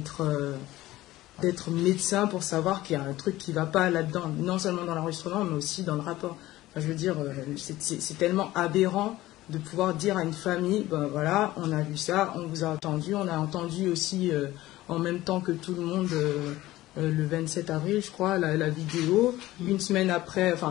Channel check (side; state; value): right; quieter; 16.6 dB